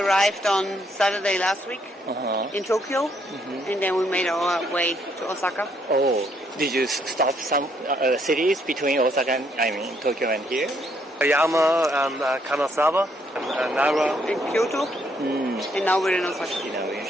on Saturday last week in Tokyo, and then we made our way to Osaka. Oh, did you stop some cities between Osaka and Tokyo and here? Oyama and Kanazawa and Nara. In Kyoto, and now we're in Osaka. We're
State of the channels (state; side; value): normal; both; correlation 0.71